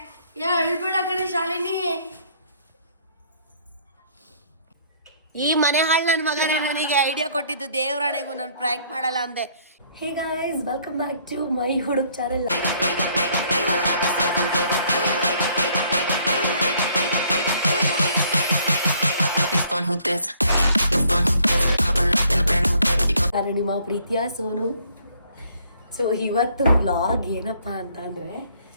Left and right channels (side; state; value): both; inverted; correlation -0.63